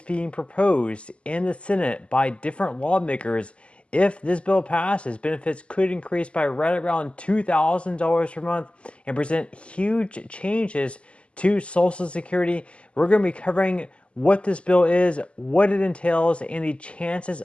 being proposed in the Senate by different lawmakers. If this bill passes, benefits could increase by right around $2,000 per month and present huge changes to Social Security. We're going to be covering what this bill is, what it entails, and the chances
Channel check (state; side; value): late; right; 0.056 ms